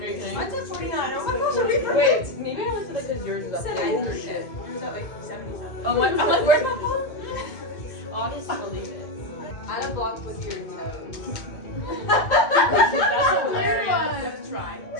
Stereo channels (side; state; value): right; late; 2.0 ms